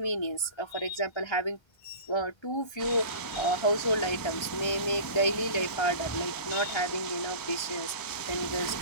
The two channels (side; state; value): right; late; 1.3 ms